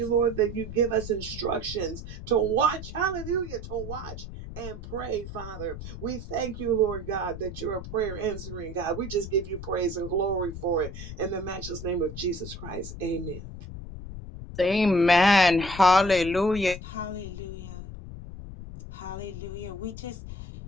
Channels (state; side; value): noise; left; rumble, 10 dB below the sound